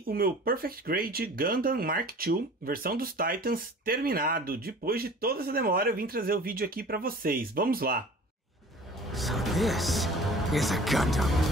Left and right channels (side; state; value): both; normal; correlation 0.44